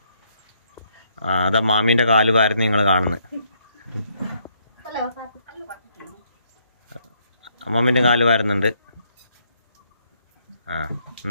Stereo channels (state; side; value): inverted; both; correlation -0.72